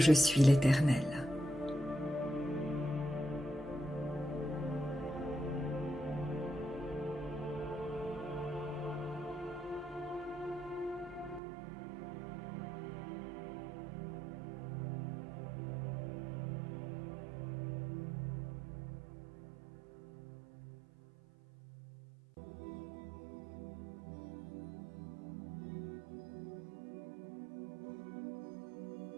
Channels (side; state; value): left; drops out; at 11.4 s